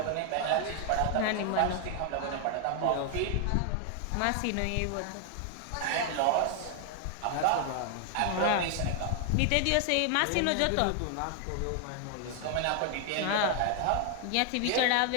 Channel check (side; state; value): both; different; correlation 0.00